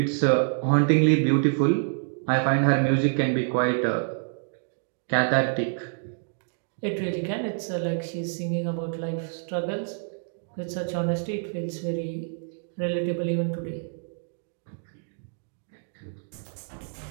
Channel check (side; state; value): left; silent; digital silence